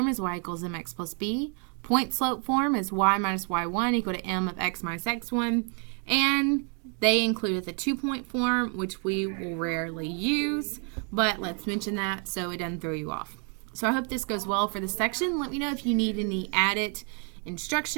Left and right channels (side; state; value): left; quieter; 39.5 dB